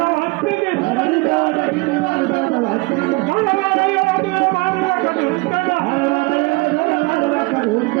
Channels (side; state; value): left; quieter; 25.1 dB